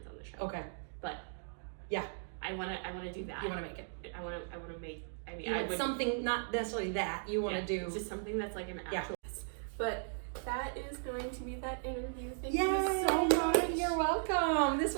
on the show. Okay. But yeah, I wanna do that. You wanna make it. I wanna make. I mean, You want something, not necessarily that you want to do. just something that's like an actual. Yeah. But that is going to be that interview. Thank Yay! you so much. You're welcome. This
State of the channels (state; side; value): silent; left; digital silence